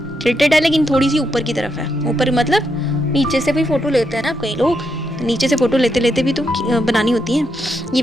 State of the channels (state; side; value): normal; both; correlation 0.81